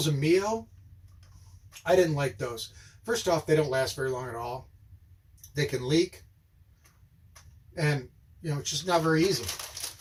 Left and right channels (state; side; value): identical; both; correlation 1.00